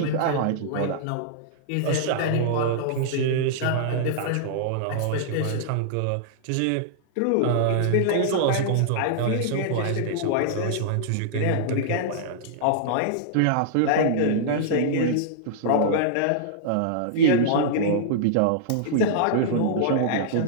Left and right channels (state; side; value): different; both; correlation -0.02